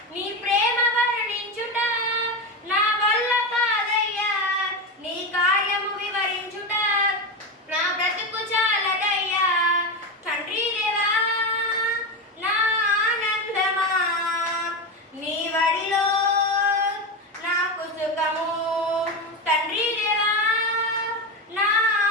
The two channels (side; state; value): both; normal; correlation 0.16